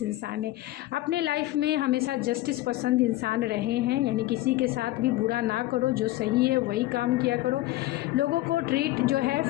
इंसान है, अपने लाइफ में हमेशा जस्टिस पसंद इंसान रहे हैं, यानी किसी के साथ भी बुरा ना करो, जो सही है वही काम किया करो, लोगों को ट्रीट जो है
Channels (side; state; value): right; quieter; 16.9 dB